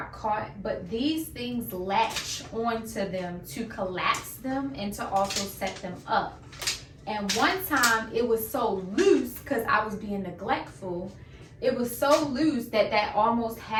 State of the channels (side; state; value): both; identical; correlation 1.00